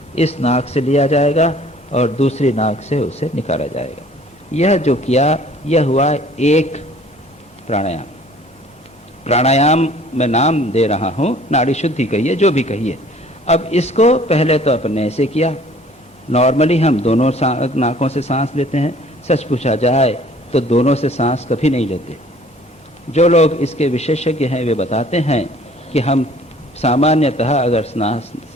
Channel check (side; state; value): both; normal; correlation 0.53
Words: इस नाक से लिया जाएगा और दूसरी नाक से उसे निकाला जाएगा। यह जो किया यह हुआ एक प्राणायाम। प्राणायाम में नाम दे रहा हूँ, नाड़ी शुद्धि कहिए, जो भी कहिए। अब इसको पहले तो अपने ऐसे किया। नॉर्मली हम दोनों नाकों से सांस लेते हैं। सच पूछा जाए तो दोनों से सांस कभी नहीं लेते। जो लोग इसके विशेषज्ञ हैं वे बताते हैं कि हम सामान्यतः अगर